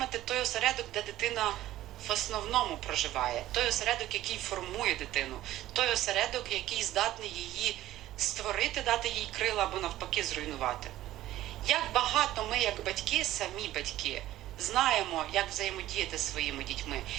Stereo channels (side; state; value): left; quieter; 14.5 dB